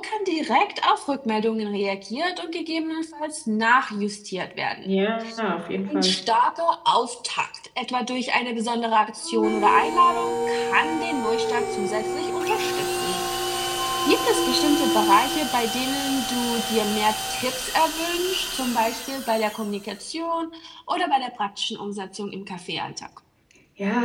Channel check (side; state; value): both; identical; correlation 1.00